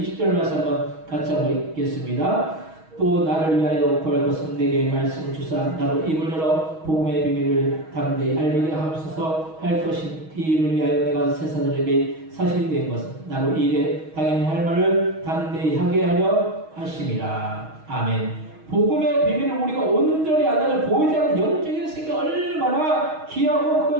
말씀 한번 같이 한번 읽겠습니다. 또 나를 위하여 구할 것은 내게 말씀을 주사 나로 입을 열어 복음의 비밀을 담대히 알리게 하옵소서 할 것인 이 일을 위하여 내가 세사들에게 사실이 된 것은 나로 이 일에 당연히 할 말을 담대히 하게 하려 하심이라. 아멘. 복음의 비밀을 우리가 온전히 안다면 보이지 않는 영적인 세계가 얼마나 귀하고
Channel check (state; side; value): late; left; 6.3 ms